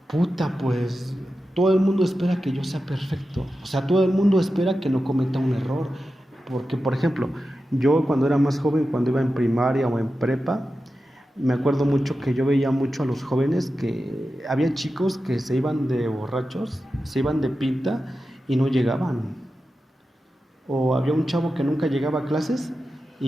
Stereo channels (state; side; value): normal; both; correlation 0.92